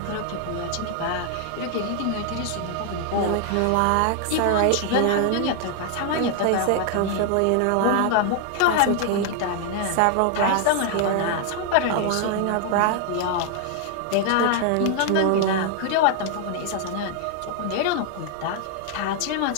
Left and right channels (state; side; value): different; both; correlation 0.00